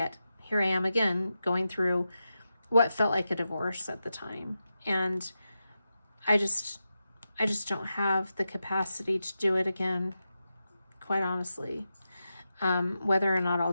I am again going through what felt like a divorce at the time. And I just don't have the capacity to do it again, quite honestly. Whether or not I'll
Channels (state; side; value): inverted; both; correlation -0.90